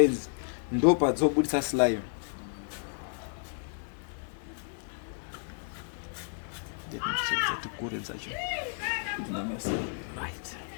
ndo padzobudisa slime. Let me check that the code is actually right.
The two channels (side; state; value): right; silent; digital silence